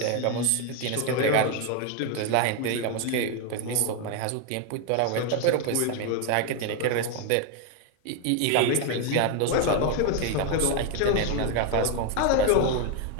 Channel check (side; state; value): both; different; correlation 0.01